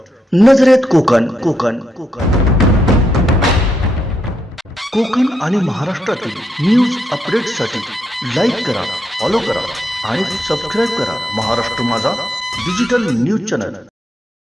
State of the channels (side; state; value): both; normal; correlation 0.80